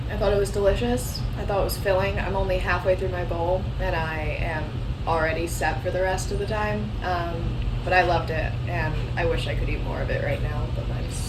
I thought it was delicious. I thought it was filling. I'm only halfway through my bowl and I am already set for the rest of the time. But I loved it and I wish I could eat more of it right now, but I'm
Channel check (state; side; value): identical; both; correlation 1.00